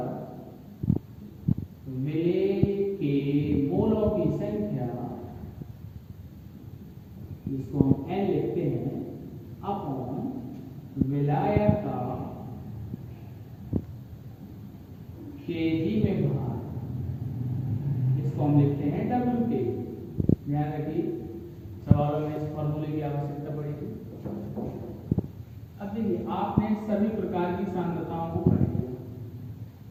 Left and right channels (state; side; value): identical; both; correlation 1.00